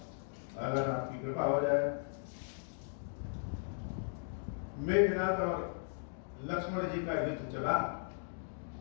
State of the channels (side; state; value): right; silent; digital silence